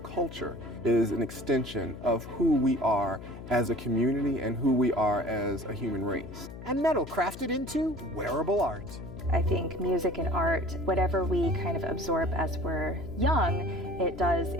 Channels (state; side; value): noise; left; hum, 13 dB below the sound